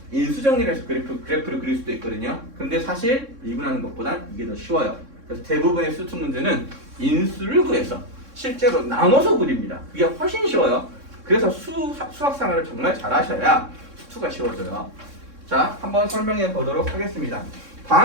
인수 정리를 해서 그래프를 그릴 수도 있거든요. 근데 사실 미분하는 것보단 이게 더 쉬워요. 그래서 대부분의 수투 문제는 인수를 구해서 실제로 나눠서 그립니다. 그게 훨씬 쉬워요. 그래서 수학상을 정말 잘하셔야 수투가 쉬워져요. 자, 한번 설명해 보도록 하겠습니다.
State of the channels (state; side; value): late; left; 3.6 ms